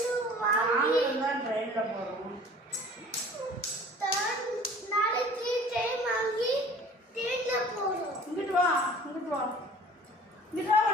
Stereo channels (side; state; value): both; normal; correlation 0.47